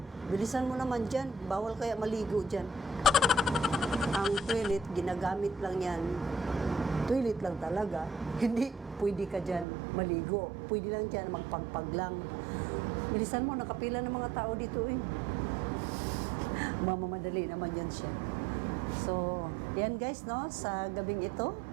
bilisan mo naman dyan. Bawal kaya maligo dyan. Ang toilet, ginagamit lang yan. Toilet lang talaga. Hindi pwede ka dyan maligo. Pwede lang dyan magpagpag lang. Bilisan mo, nakapila ng mga tao dito eh. Mamamadali naman yan siya. So, yan guys, no? Sa gabing ito,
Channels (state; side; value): drops out; left; at 9.7 s